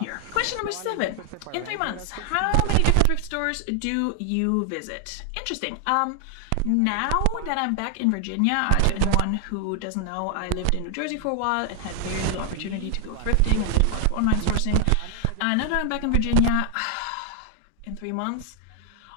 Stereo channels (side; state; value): both; different; correlation 0.00